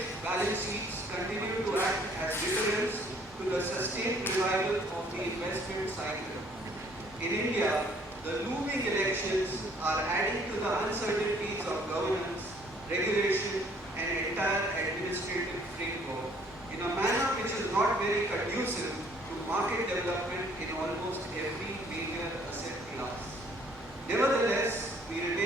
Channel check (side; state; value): both; normal; correlation 0.61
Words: balance sheets continue to act as deterrents to the sustained revival of the investment cycle. In India, the looming elections are adding to the uncertainties of governance, regulation, and entire administrative framework in a manner which is not very conducive to market development in almost every major asset class. Nevertheless, we